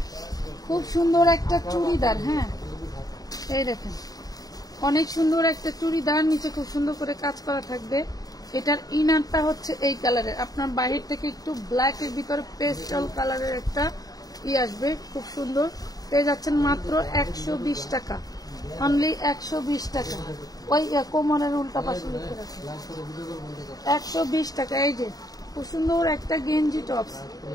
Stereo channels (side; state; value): right; late; 0.18 ms